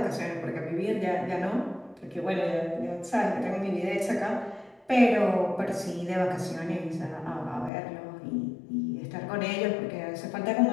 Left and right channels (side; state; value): right; drops out; at 7.7 s